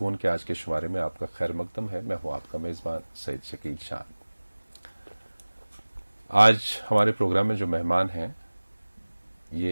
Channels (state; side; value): inverted; both; correlation -1.00